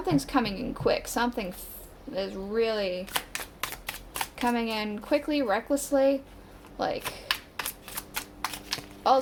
coming in quick. Something is really coming in quickly, recklessly, like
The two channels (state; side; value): identical; both; correlation 1.00